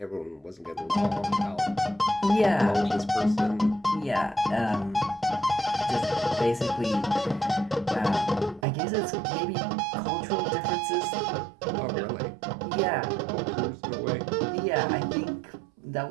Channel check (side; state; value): left; drops out; at 8.7 s